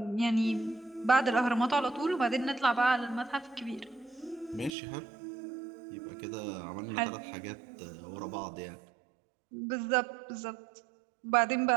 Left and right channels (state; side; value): drops out; left; at 4.7 s